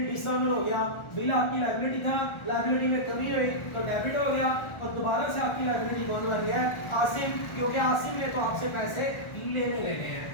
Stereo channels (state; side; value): late; right; 1.4 ms